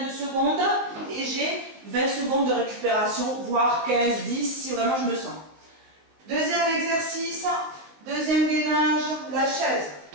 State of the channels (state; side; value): late; left; 19 ms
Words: de secondes, et j'ai 20 secondes de récupération, voire 15, 10, si vraiment je me sens. Deuxième exercice, deuxième gainage, la chaise.